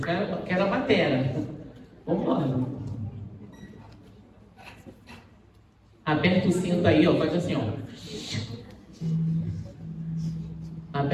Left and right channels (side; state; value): both; identical; correlation 1.00